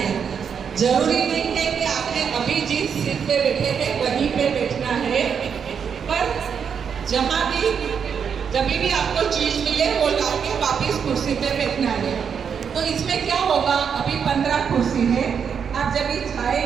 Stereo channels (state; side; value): quieter; left; 7.0 dB